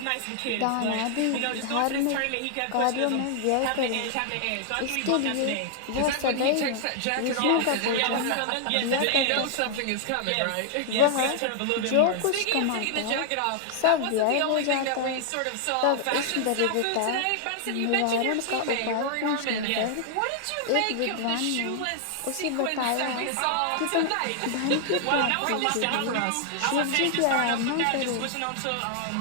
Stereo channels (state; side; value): different; both; correlation 0.00